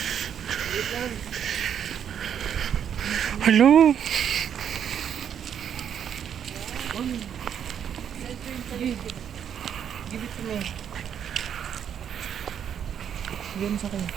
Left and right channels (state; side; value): quieter; left; 8.7 dB